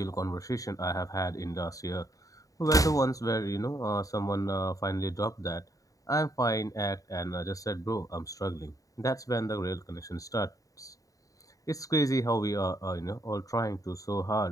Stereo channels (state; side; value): late; right; 0.16 ms